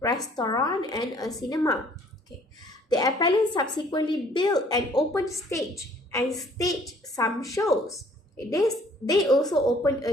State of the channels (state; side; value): normal; both; correlation 0.58